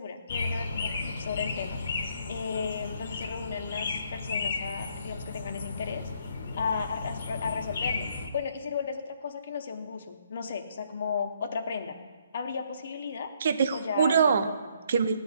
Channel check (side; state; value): both; inverted; correlation -0.69